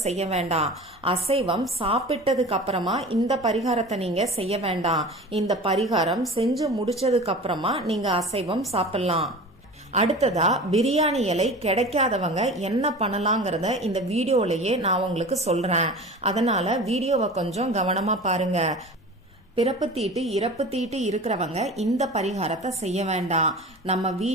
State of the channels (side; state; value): both; normal; correlation 0.36